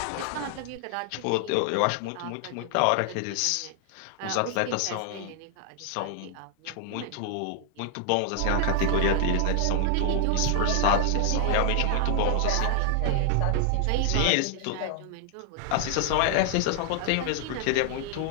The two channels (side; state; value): both; different; correlation 0.00